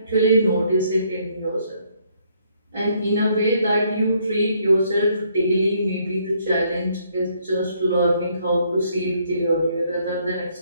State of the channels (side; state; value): both; inverted; correlation -0.69